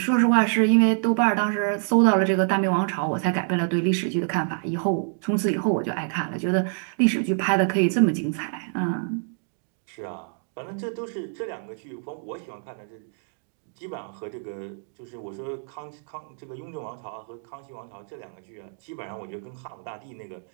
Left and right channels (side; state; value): left; silent; 61 dB below the other